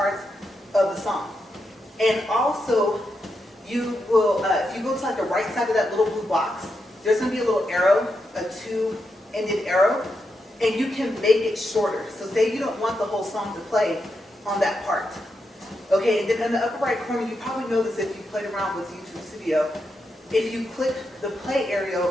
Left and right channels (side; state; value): both; normal; correlation 0.85